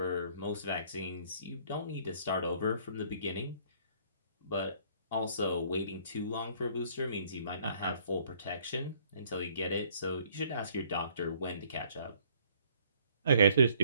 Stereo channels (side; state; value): both; inverted; correlation -0.62